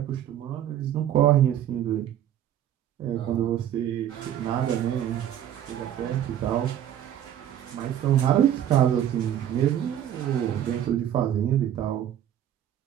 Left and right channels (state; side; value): quieter; left; 10.8 dB